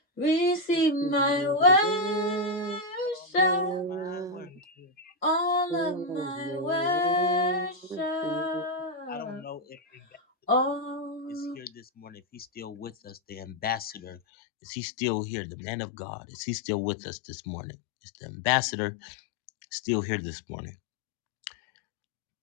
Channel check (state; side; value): drops out; right; at 14.2 s